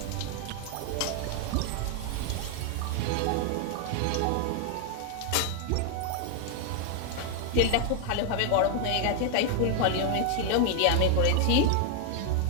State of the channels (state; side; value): different; both; correlation 0.00